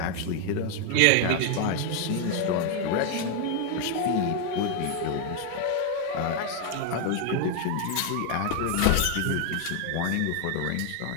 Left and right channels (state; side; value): different; both; correlation 0.00